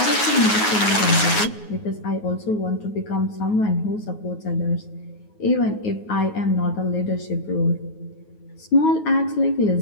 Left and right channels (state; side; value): late; right; 9.4 ms